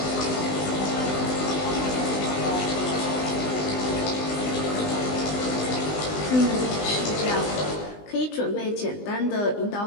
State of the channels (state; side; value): late; right; 20 ms